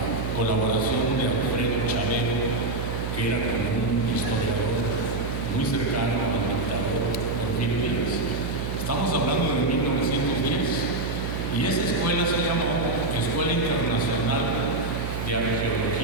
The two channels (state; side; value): noise; right; hum, 4 dB below the sound